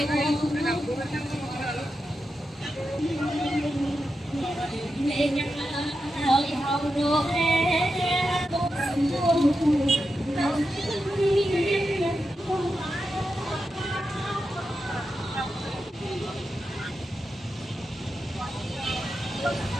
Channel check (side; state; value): both; normal; correlation 0.89